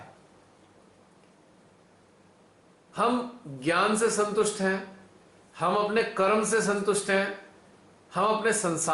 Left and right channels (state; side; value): identical; both; correlation 1.00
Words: हम ज्ञान से संतुष्ट हैं, हम अपने कर्म से संतुष्ट हैं, हम अपने